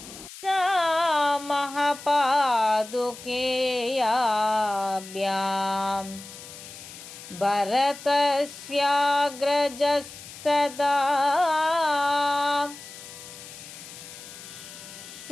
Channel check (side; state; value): left; noise; hiss, 15 dB below the sound